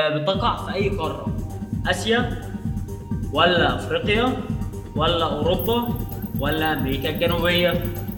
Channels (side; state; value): both; identical; correlation 1.00